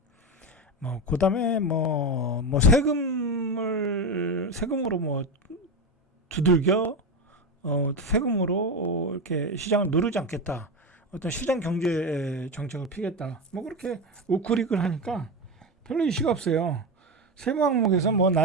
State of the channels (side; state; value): both; normal; correlation 0.17